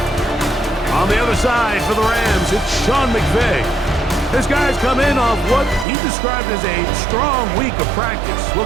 On the other side for the Rams, it's Sean McVay. His guys come in off what he described as a strong week of practice,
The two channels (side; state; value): left; drops out; at 5.9 s